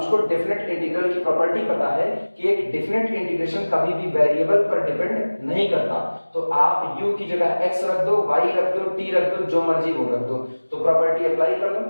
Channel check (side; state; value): both; inverted; correlation -1.00